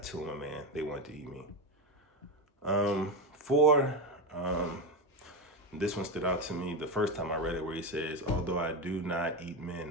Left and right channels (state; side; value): normal; both; correlation 0.13